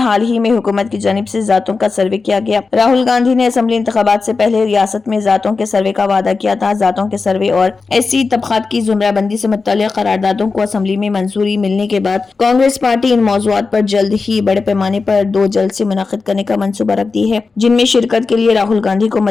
ہی میں حکومت کی جانب سے ذاتوں کا سروے کیا گیا۔ راہل گاندھی نے اسمبلی انتخابات سے پہلے ریاست میں ذاتوں کے سروے کا وعدہ کیا تھا۔ ذاتوں کے سروے اور SC طبقات کی زمرہ بندی سے متعلق قراردادوں کو اسمبلی میں منظوری ملنے کے بعد کانگریس پارٹی ان موضوعات پر جلد ہی بڑے پیمانے پر 2 جلسے منعقد کرنے کا منصوبہ رکھتی ہے، جن میں شرکت کے لیے راہل گاندھی کو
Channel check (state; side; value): quieter; right; 4.3 dB